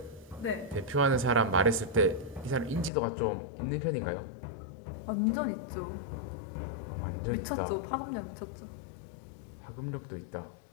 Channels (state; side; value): drops out; right; at 2.9 s